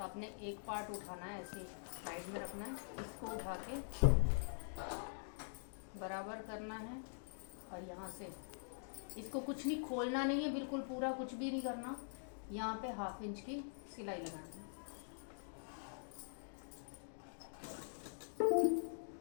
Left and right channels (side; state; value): right; silent; digital silence